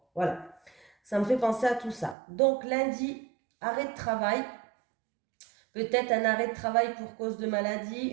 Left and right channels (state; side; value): drops out; left; at 2.1 s